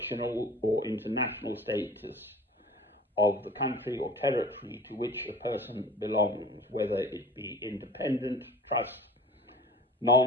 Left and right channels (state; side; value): normal; both; correlation 0.43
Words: or international status of the country or territory to which a person belongs, whether it be independent, trust,